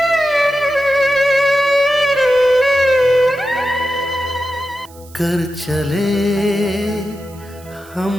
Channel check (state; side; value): noise; right; hiss, 24 dB below the sound